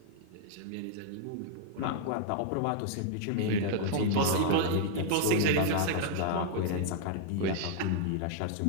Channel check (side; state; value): both; different; correlation -0.01